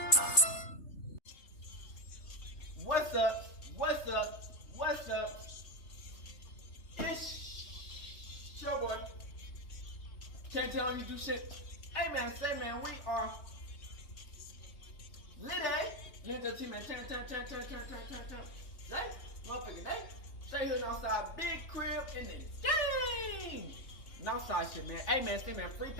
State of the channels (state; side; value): late; right; 3.3 ms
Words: Wow, what the fuck? What's up? It's your boy. Can't tell you do shit. Hey man, say man, we are lit, lit the team, man. Turn. Say, motherfucking day. Say here outside, big crib in the game. Outside shit, man. Hey man, say man, free